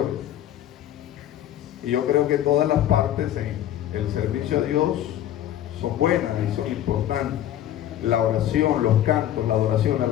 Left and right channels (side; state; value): right; quieter; 11.9 dB